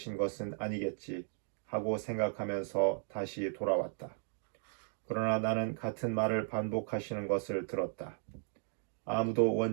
것은 아니겠지 하고 생각하면서 다시 돌아왔다. 그러나 나는 같은 말을 반복하시는 것을 들었다. 아무도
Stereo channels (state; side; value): silent; left; digital silence